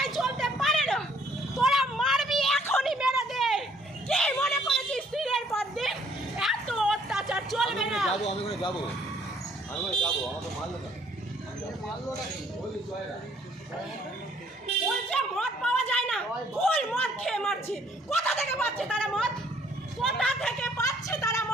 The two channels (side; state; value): both; normal; correlation 0.62